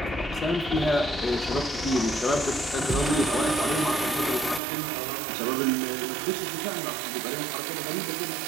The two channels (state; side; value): drops out; left; at 4.6 s